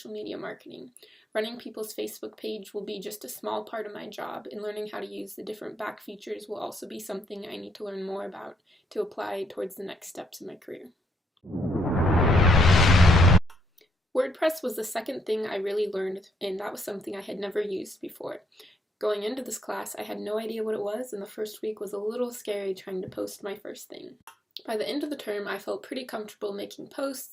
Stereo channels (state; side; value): normal; both; correlation 0.73